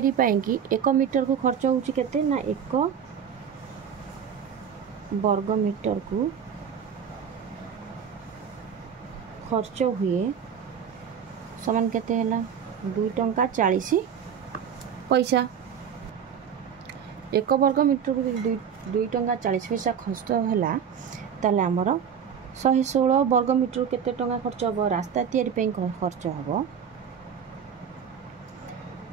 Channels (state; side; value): quieter; left; 7.7 dB